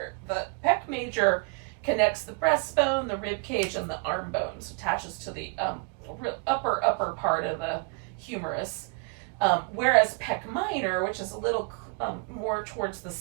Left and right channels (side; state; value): left; quieter; 32.1 dB